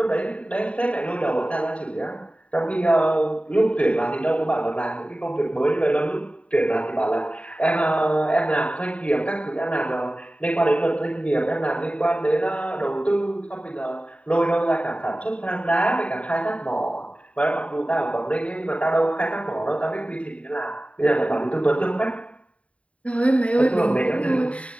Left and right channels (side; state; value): right; late; 0.064 ms